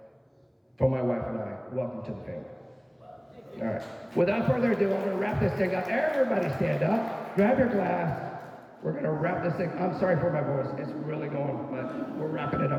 for my wife and I, welcome to the family. All right. Without further ado, I'm going to wrap this thing up. Everybody stand up. Grab your glass. We're going to wrap this thing. I'm sorry for my voice. It's really going, but we're wrapping it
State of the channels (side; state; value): both; identical; correlation 1.00